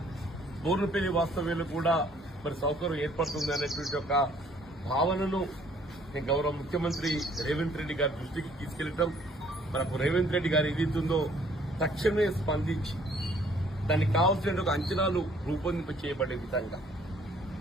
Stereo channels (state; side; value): normal; both; correlation 0.60